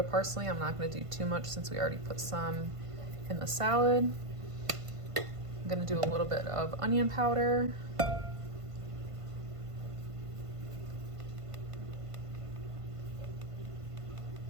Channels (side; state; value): left; late; 1.5 ms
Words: parsley. I'm not gonna do too much since we already put some in the salad. I'm gonna do a little bit of onion powder.